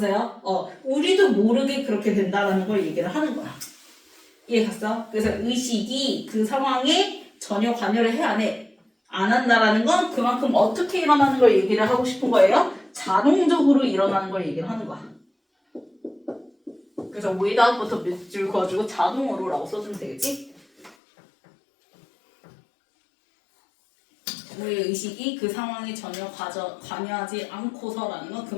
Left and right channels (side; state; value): right; drops out; at 21.0 s